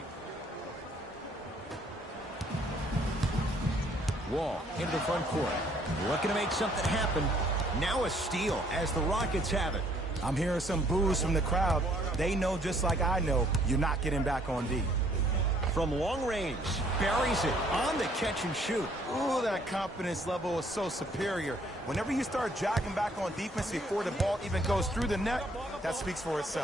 Wall into the front court. Looking to make something happen. Now a steal as the Rockets have it. I'm hearing some boos from the crowd. They know just like I know you're not getting back on D. From long range, buries it on the catch and shoot. Ooh, that confidence level is so superior. Whenever you start jogging back on defense before the ball even goes through the net, that speaks for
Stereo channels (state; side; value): normal; both; correlation 0.63